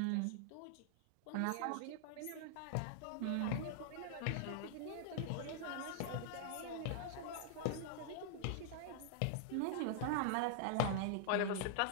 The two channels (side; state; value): both; different; correlation -0.01